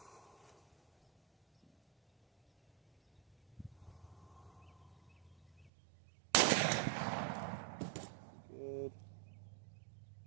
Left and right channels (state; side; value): drops out; left; at 5.7 s